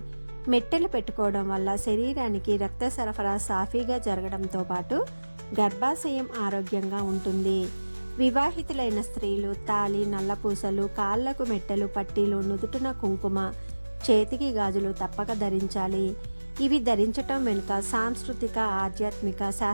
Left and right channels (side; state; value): both; inverted; correlation -1.00